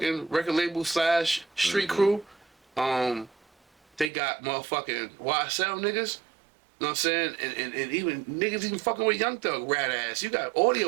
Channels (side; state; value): left; drops out; at 4.1 s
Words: record label / street crew. They got motherfucking YSL niggas. You know what I'm saying? And even niggas even fucking with Young Thug, rat ass. You got